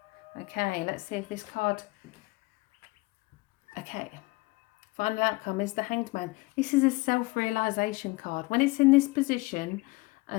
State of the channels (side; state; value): right; quieter; 23.2 dB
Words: Okay, let's see if this card... Okay, final outcome is the Hanged Man. This is a self-realisation card. When it's in this position